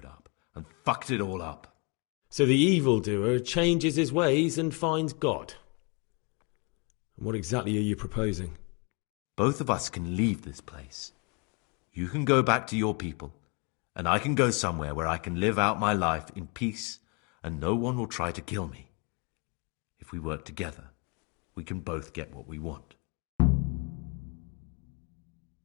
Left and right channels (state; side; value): quieter; right; 32.6 dB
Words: up and fucked it all up. So the evildoer changes his ways and finds God. And what exactly are you proposing? Both of us can leave this place. You can go back to your people, and I can go somewhere where I can live out my life in peace, and no one will try to kill me. If we work together, we can both get what we want.